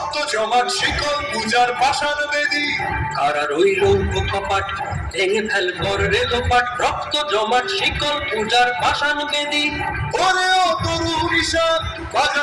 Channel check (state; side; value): identical; both; correlation 1.00